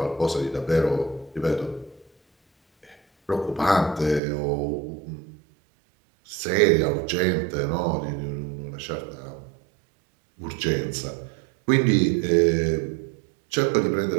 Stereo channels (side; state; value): left; drops out; at 4.2 s